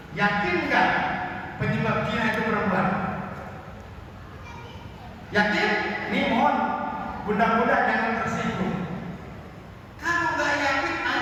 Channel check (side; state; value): both; identical; correlation 1.00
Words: Yakin nggak penyebab zina itu perempuan? Yakin? Nih mohon bunda-bunda jangan tersinggung. Kalau nggak yakin,